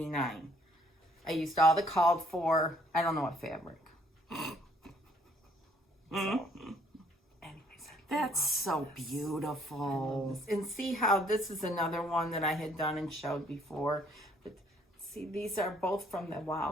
I used all the called for, I don't know what fabric. So, anyways, That's so beautiful. and see how this is another one that I had done and showed before. But see, these are both from the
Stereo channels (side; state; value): both; normal; correlation 0.63